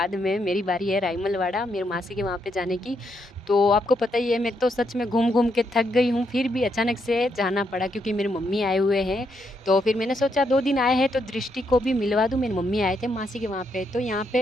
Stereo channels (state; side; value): normal; both; correlation 0.78